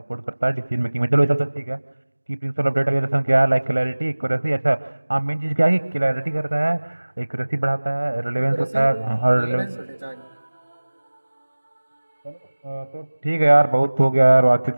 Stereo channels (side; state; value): both; inverted; correlation -1.00